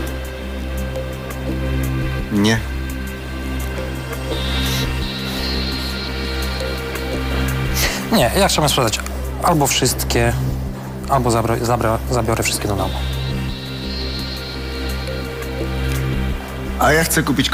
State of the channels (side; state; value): both; identical; correlation 1.00